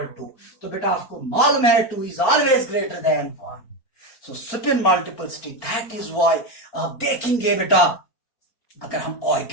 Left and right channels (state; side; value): late; right; 4.4 ms